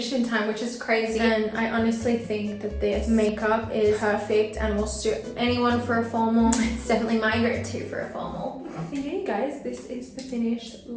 in time, which is crazy. And I honestly think that this makeup is perfect and will suit anyone for a formal. It's definitely my go-to for a formal. So yeah, you guys, this is the finished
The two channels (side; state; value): both; identical; correlation 1.00